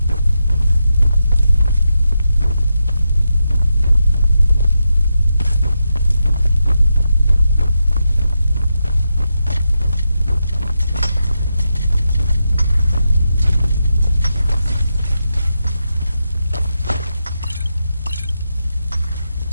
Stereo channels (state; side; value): inverted; both; correlation -0.86